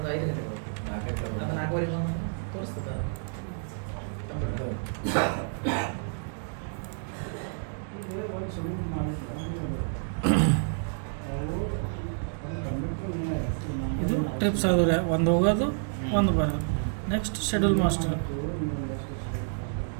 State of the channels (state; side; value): silent; left; digital silence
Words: 5 ಗಂಟೆ ಬರುತ್ತೆ. ಅದು 4:15 ಬಂದು ತೋರಿಸ್ತದೆ. ಇದು ಟ್ರಿಪ್ಸ್ ಆದ್ರೆ ಒಂದು ಹೋಗೋದು ಒಂದು ಬರೋದು. Next schedule master,